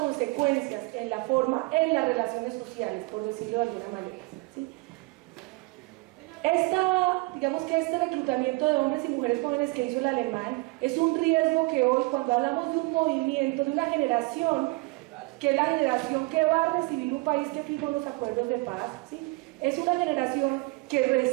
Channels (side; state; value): left; quieter; 25.1 dB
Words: en las relaciones sociales, por decirlo de alguna manera, ¿sí? Este reclutamiento de hombres y mujeres jóvenes que hizo el alemán es un riesgo que hoy, cuando hablamos de un movimiento, de una generación, que es la generación que va a recibir un país que firmó los acuerdos de paz, ¿sí? Es una generación que